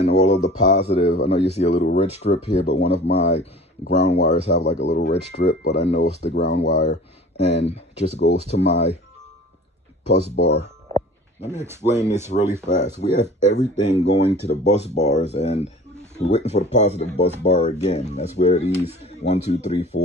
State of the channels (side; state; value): both; normal; correlation 0.44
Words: all of the positive. I know you see a little red strip here, but one of my ground wires have like a little red strip, but I know it's the ground wire, and it just goes to my bus bar. Let me explain this really fast. We have everything going to the bus bars, and we're waiting for the positive bus bar again. That's where these 1, 2, 3,